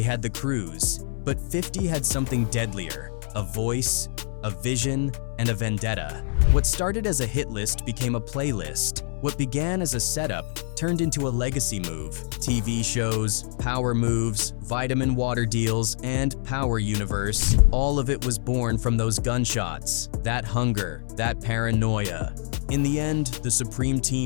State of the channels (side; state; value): right; silent; 61 dB below the other